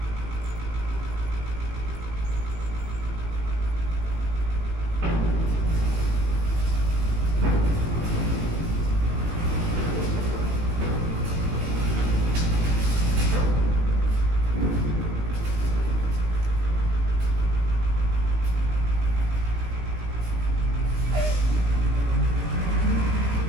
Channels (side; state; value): left; late; 18 ms